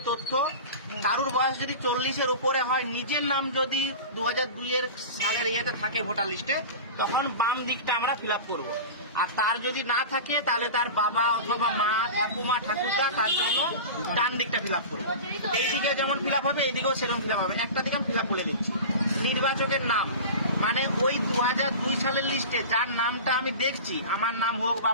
তথ্য, কারুর বয়স যদি 40-এর উপরে হয়, নিজের নাম যদি 2002 সালের ইয়েতে থাকে ভোটার লিস্টে, তখন বাম দিকটা আমরা ফিল আপ করবো। আর তার যদি না থাকে তাহলে তার বাবা অথবা মা, ঠাকুমা, ঠাকুরদা, তার জন্য ডান দিকটা ফিল আপ করবো। এইদিকে যেমন ফিল আপ হবে, এইদিকেও সেরকম ফিল আপ হবে। একটা দিকে আমি ফিল আপ বলে দিচ্ছি। নির্বাচকের নাম, মানে ওই 2002 সালের লিস্টে যার নামটা আমি দেখছি, আমার নাম হোক বা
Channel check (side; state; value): both; inverted; correlation -0.31